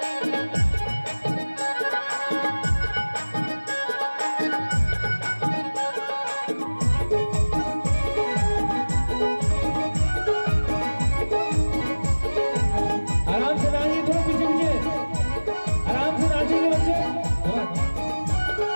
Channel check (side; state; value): both; inverted; correlation -1.00